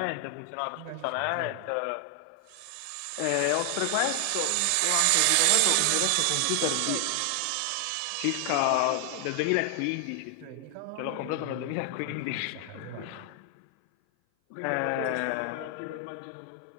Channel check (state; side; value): different; both; correlation 0.00